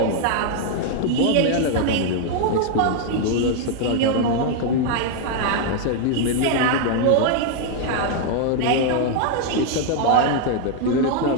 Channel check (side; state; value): both; different; correlation 0.00